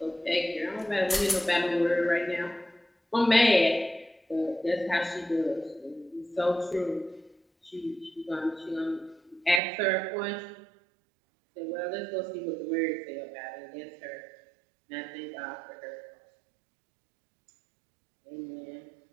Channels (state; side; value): drops out; left; at 9.6 s